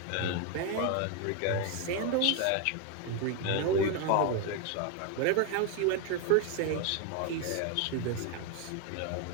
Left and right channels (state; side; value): different; both; correlation 0.01